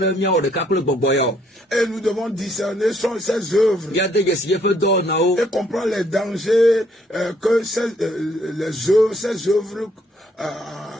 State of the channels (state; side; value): normal; both; correlation 0.68